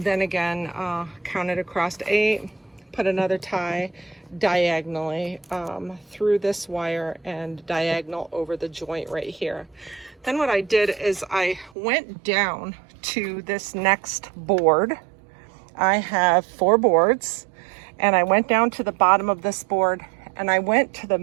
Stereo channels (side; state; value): left; drops out; at 11.7 s